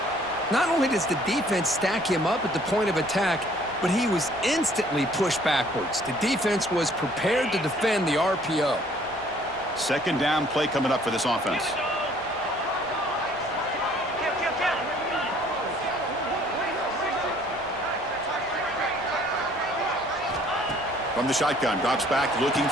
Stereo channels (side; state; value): right; noise; rumble, 23 dB below the sound